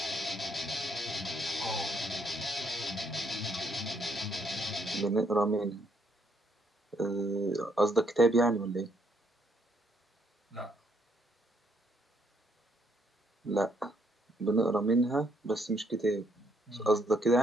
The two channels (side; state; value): both; normal; correlation 0.71